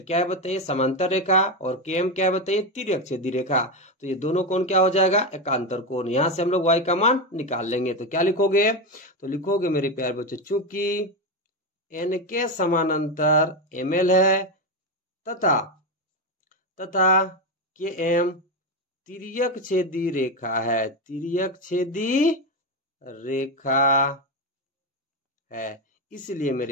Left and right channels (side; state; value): both; normal; correlation 0.12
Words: क्या है बताइए? समांतर रेखा। और के एम क्या है बताइए? तिर्यक छेदी रेखा। तो ये दोनों कोण क्या हो जाएगा? एकांतर कोण। यहां से हम लोग वाई का मान निकाल लेंगे। तो क्या लिखोगे? तो लिखोगे मेरे प्यारे बच्चों, चूंकि एन के समानांतर एम एल है तथा के एम तिर्यक छेदी रेखा है, तिर्यक छेदी रेखा है, इसलिए